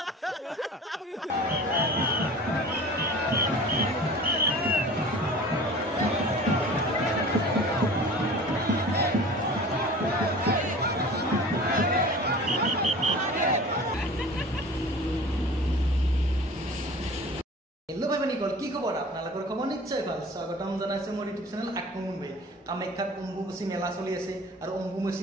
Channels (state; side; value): normal; both; correlation 0.41